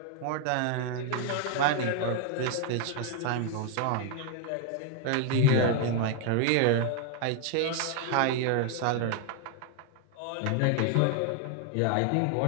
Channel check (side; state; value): both; different; correlation 0.00